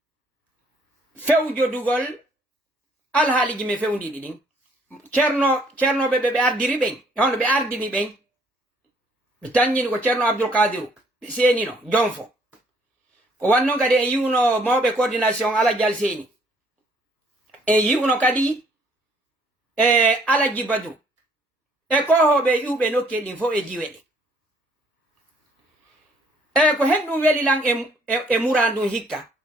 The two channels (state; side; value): normal; both; correlation 0.63